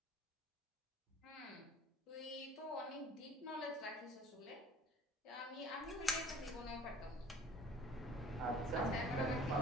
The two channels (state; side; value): normal; both; correlation 0.49